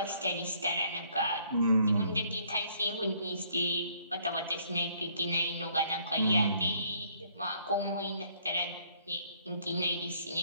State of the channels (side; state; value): both; inverted; correlation -0.64